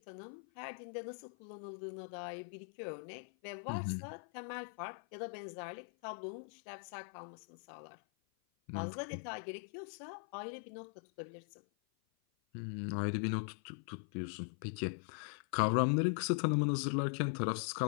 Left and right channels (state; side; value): silent; right; 50 dB below the other